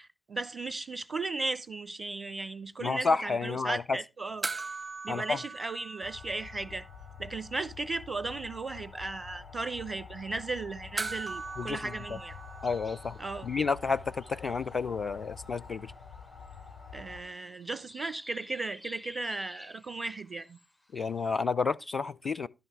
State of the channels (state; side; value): normal; both; correlation 0.85